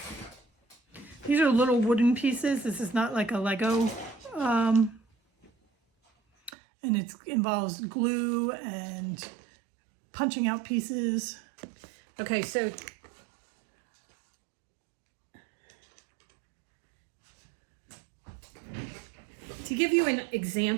These are little wooden pieces. This is not like a Lego. And it involves glue and punching out pieces. Okay, so to give you an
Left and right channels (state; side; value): drops out; left; at 6.5 s